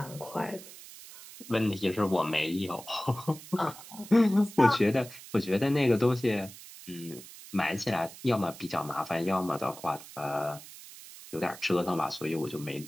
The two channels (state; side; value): noise; right; hiss, 16 dB below the sound